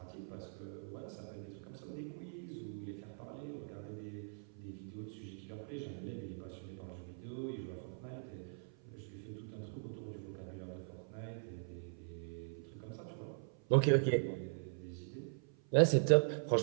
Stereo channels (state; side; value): silent; left; 50 dB below the other